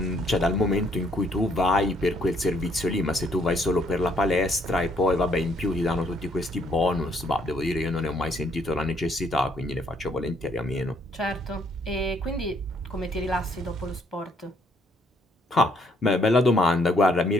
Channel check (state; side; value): normal; both; correlation 0.68